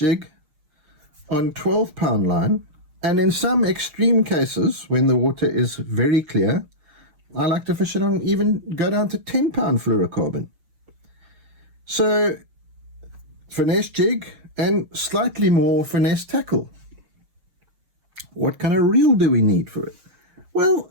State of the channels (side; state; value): left; late; 6.4 ms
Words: on 12-pound line, and in some extreme cases, when the water is very clear, I like to fish it on, even go down to 10-pound fluorocarbon. So, finesse jig and slightly more finesse tackle. What kind of reel do we need for it?